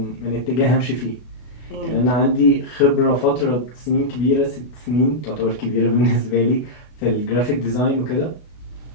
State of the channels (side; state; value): right; late; 33 ms